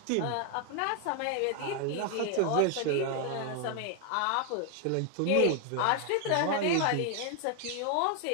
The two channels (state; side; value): different; both; correlation 0.00